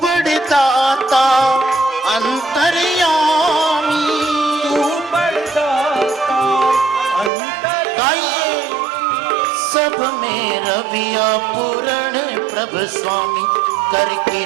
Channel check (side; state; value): left; drops out; at 7.3 s